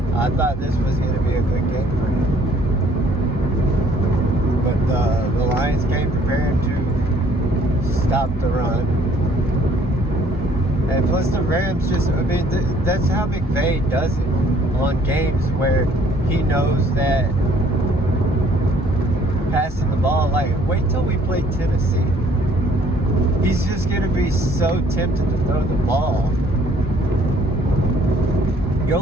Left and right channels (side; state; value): both; normal; correlation 0.60